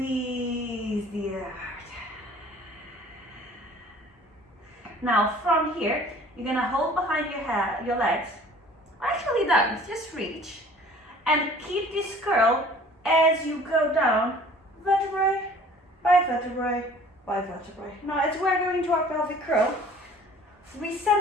the air out. Now from here, you're gonna hold behind your legs. Actually don't, just reach. And keep this curl as you go down, vertebrae by vertebrae by vertebrae. Now as we're going to our pelvic curl,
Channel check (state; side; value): normal; both; correlation 0.50